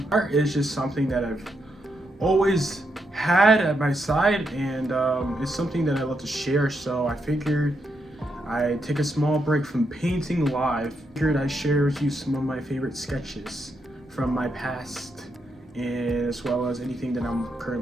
Art is just something that I've always had at my side, and it's something that I love to share, so I figured I'd take a small break from painting live. Figured I'd share with you some of my favorite sketches from my past, and as well as anything that I'm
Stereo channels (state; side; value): normal; both; correlation 0.81